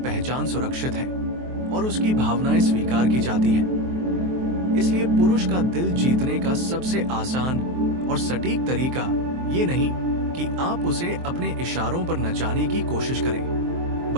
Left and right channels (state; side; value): late; left; 23 ms